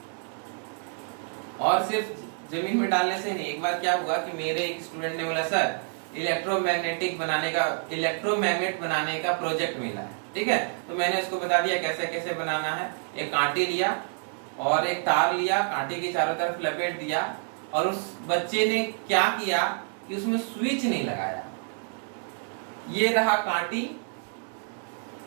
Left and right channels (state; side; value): silent; left; 56 dB below the other